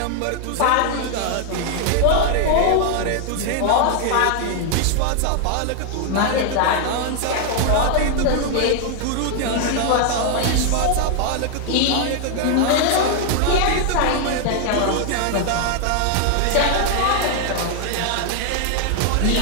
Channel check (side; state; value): both; different; correlation 0.00